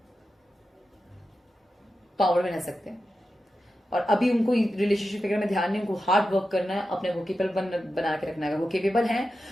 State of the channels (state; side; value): normal; both; correlation 0.91